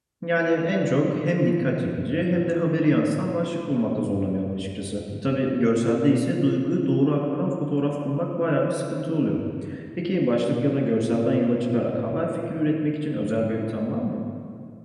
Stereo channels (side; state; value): both; identical; correlation 1.00